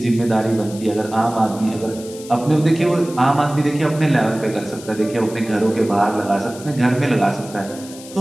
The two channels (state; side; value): noise; left; hiss, 17 dB below the sound